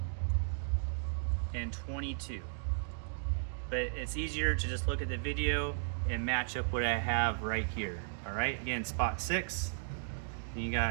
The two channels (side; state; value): left; silent; digital silence